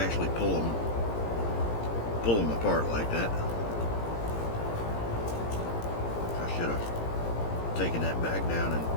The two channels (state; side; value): late; right; 17 ms